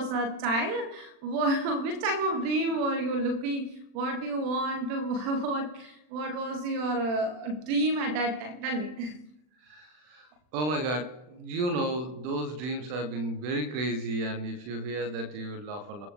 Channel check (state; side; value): late; left; 40 ms